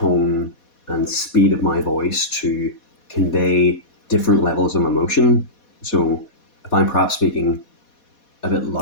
and speed of my voice to convey different levels of emotion. So if I'm perhaps speaking a bit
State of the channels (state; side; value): late; right; 4.2 ms